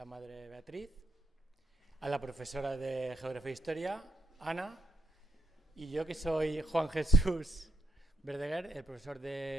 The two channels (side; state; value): both; normal; correlation 0.76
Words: Madre Beatriz, a la profesora de Geografía e Historia, Ana, y yo que soy Juan Jesús Verdeguer, el profesor